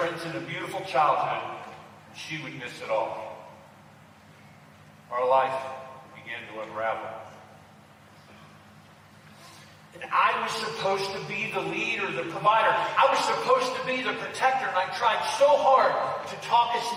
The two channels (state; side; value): identical; both; correlation 1.00